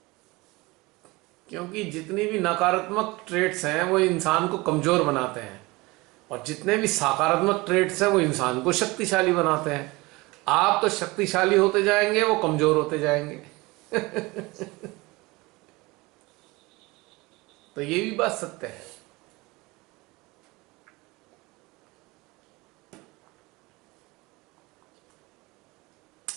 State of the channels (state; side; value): quieter; left; 22.9 dB